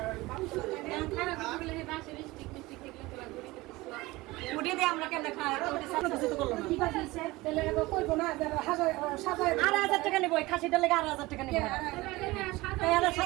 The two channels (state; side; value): quieter; left; 20.5 dB